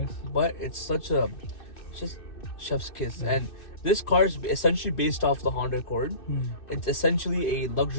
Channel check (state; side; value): late; right; 2.6 ms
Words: But it's just chef's kiss. And this car is essentially based off the Honda Accord. It's essentially a